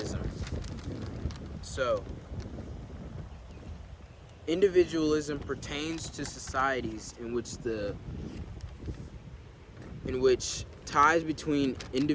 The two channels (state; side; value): identical; both; correlation 1.00